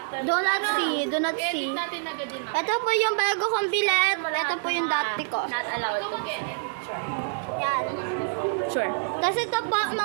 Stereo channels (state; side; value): silent; left; digital silence